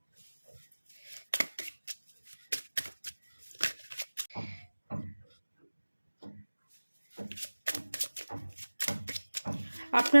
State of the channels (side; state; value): both; inverted; correlation -1.00